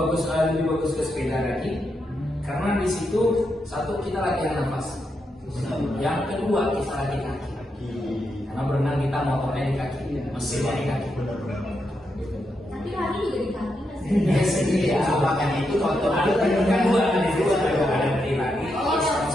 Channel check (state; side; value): normal; both; correlation 0.83